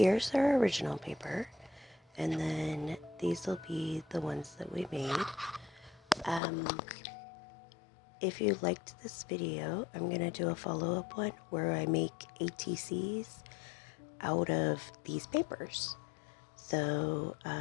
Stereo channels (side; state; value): right; drops out; at 6.4 s